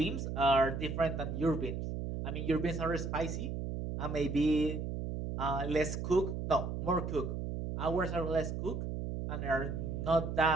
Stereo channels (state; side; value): noise; right; hum, 4 dB below the sound